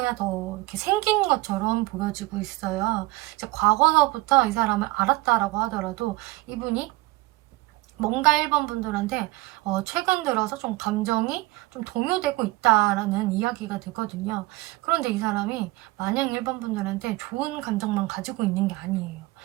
더 이렇게 생긴 것처럼 보여지고 있어요. 이제 과거서부터 이 사람을 알았다라고 하더라도 이분이 뭔가 1번 분들한테 최근 들어서 좀 감정이 좀 동요되고 있다라는 이야기가 되거든요. 그런데 이 사람이 마냥 1번 분들한테 좋은 감정만 가지고 있는 게 아니에요.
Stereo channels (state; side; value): quieter; left; 20.5 dB